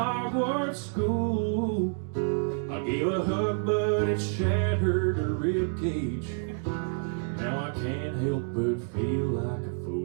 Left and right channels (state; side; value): silent; left; 59 dB below the other